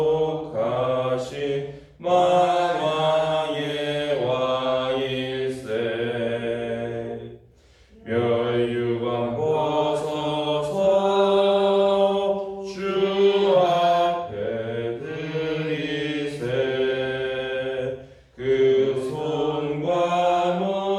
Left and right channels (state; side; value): identical; both; correlation 1.00